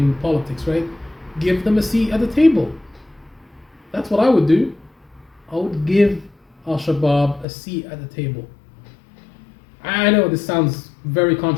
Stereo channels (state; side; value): drops out; right; at 7.5 s